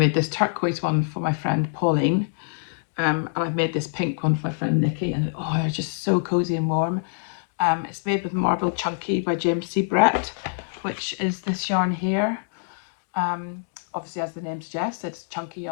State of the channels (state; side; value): silent; right; 62 dB below the other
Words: this turquoise one for my friend Pauline, and I've made this pink one for my friend Nikki, and oh, they're just so cozy and warm. It's made with Marble Chunky by James C. Brett, which is this yarn here. Obviously, as the name suggests, it's chunky